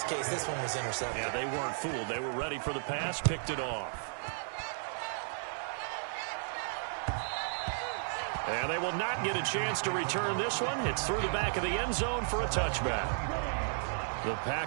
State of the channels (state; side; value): silent; left; digital silence